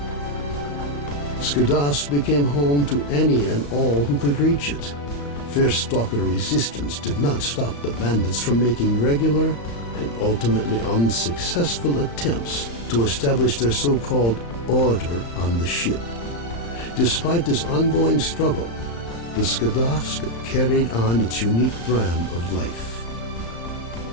Skadovsk became home to any and all who could reach it. Fierce Stalker resistance did not stop the bandits from making regular and ultimately unsuccessful attempts to establish their so-called order on the ship. Despite this ongoing struggle, the Skadovsk carried on its unique brand of life.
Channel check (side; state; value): right; late; 35 ms